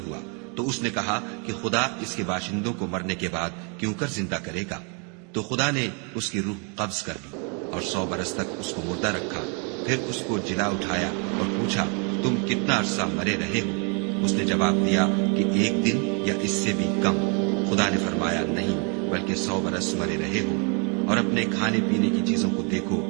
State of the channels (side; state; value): left; quieter; 36.6 dB